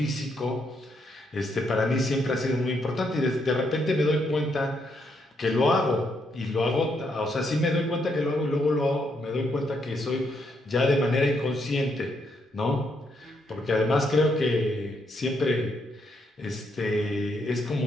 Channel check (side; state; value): both; normal; correlation 0.77